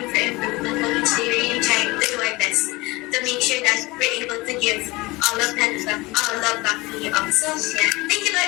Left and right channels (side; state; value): right; quieter; 22.3 dB